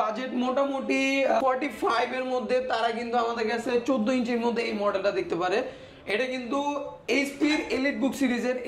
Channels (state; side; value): identical; both; correlation 1.00